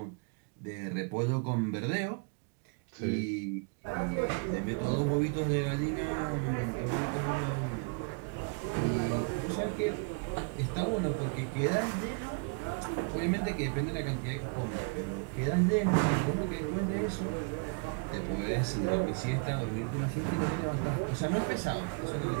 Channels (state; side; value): quieter; left; 34.3 dB